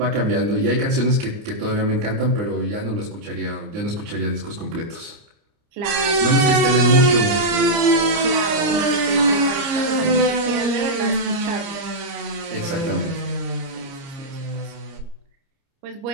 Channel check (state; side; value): late; left; 29 ms